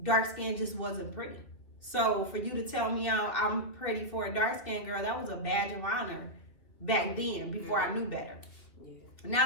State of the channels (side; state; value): right; late; 2.6 ms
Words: dark skin just wasn't pretty. So for you to tell me I'm pretty for a dark skinned girl, that was a badge of honor back then, before I knew better.